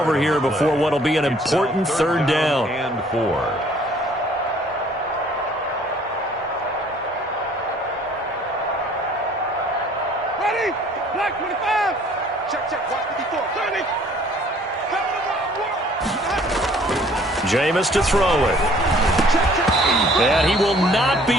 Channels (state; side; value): normal; both; correlation 0.57